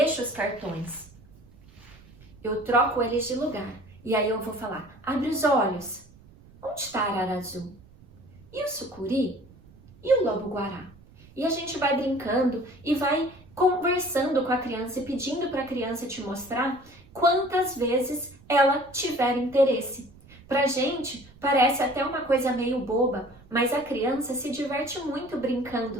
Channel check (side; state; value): right; noise; rumble, 24 dB below the sound